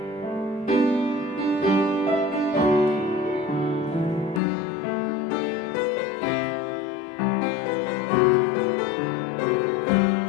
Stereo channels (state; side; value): drops out; right; at 4.4 s